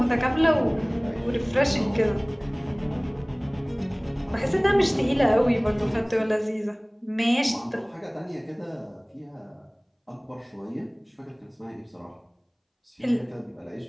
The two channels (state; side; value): identical; both; correlation 1.00